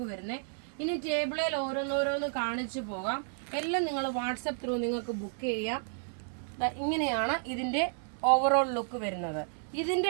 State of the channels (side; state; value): left; silent; digital silence